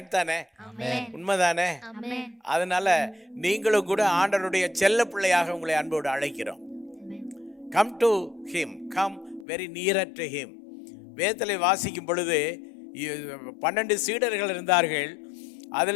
தானே? உண்மைதானே? அதனால நீங்களும் கூட ஆண்டவருடைய செல்ல பிள்ளையாக உங்களை அன்போடு அழைக்கிறோம். Come to him, come very near to him. வேதத்திலே வாசிக்கும் பொழுது 12 சீடர்கள் இருந்தார்கள்.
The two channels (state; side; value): drops out; right; at 9.5 s